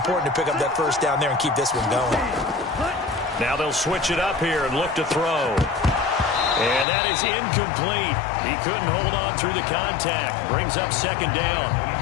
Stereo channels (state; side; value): drops out; right; at 6.9 s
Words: to pick up that first down there and keep this one going. Now they'll switch it up here and look to throw. And that is incomplete. He couldn't hold on through the contact. Brings up 2nd down.